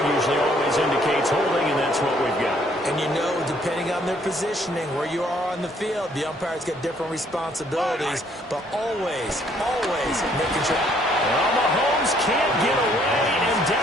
usually always indicates holding, and that's what we've got. And you know, depending on their positioning, where you are on the field, the umpires get different responsibilities, but always making sure. Well, Mahomes can't get away, and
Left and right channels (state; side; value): normal; both; correlation 0.65